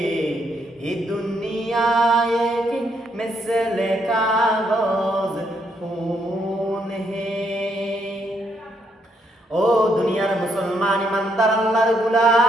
ये दुनिया एक मिसल कागज फूल है। ও দুনিয়ার মুসলমান ইমানদার আল্লাহর গোলাম,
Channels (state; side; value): normal; both; correlation 0.74